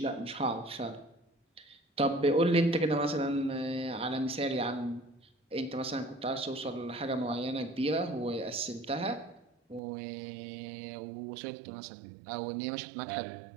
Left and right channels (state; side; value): drops out; left; at 9.8 s